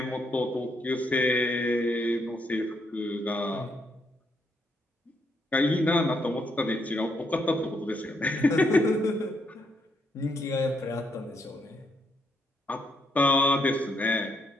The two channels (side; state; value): both; normal; correlation 0.76